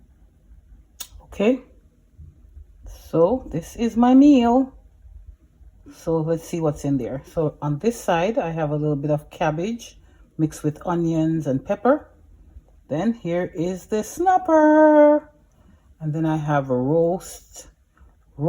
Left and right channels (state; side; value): identical; both; correlation 1.00